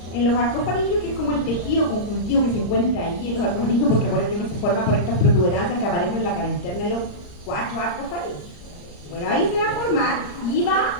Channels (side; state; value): right; late; 34 ms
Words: En los arcofaringios, que es como el tejido conjuntivo que se encuentra ahí en los arcofaringios, porque acuérdense que se forma por estas protuberancias que aparecen en la cara interna de los 4 arcofaringios. Bueno, ahí se va a formar y